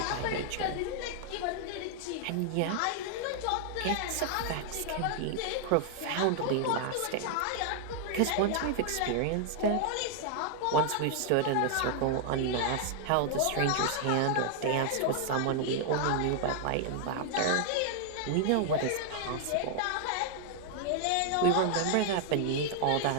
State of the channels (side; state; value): both; different; correlation 0.00